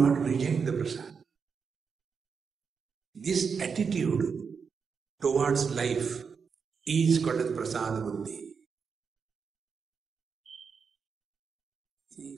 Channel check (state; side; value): quieter; left; 5.9 dB